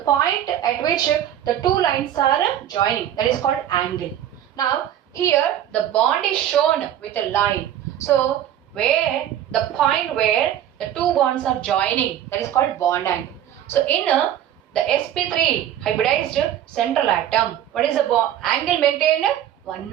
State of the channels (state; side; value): quieter; left; 11.1 dB